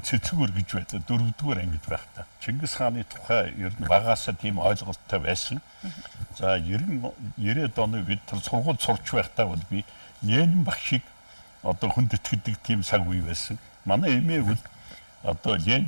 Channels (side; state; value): both; inverted; correlation -1.00